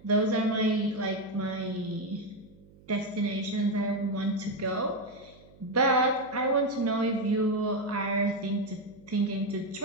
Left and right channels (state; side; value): noise; right; hum, 25 dB below the sound